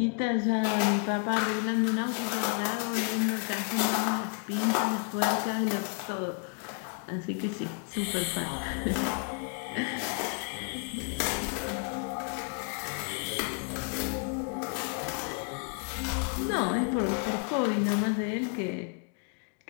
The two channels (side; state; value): right; quieter; 38.3 dB